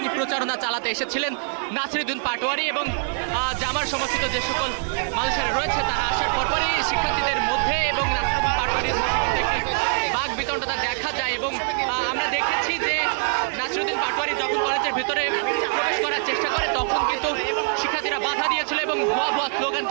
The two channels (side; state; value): left; silent; 62 dB below the other